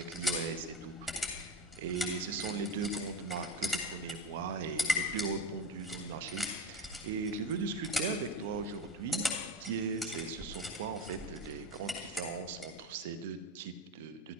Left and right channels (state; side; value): normal; both; correlation 0.22